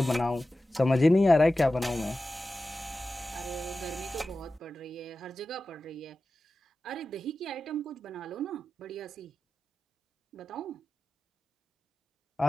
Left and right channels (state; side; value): normal; both; correlation 0.94